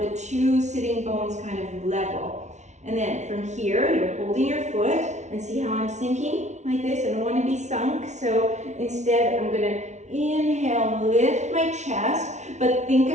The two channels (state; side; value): late; left; 0.33 ms